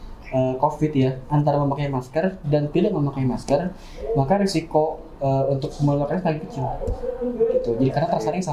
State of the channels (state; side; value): identical; both; correlation 1.00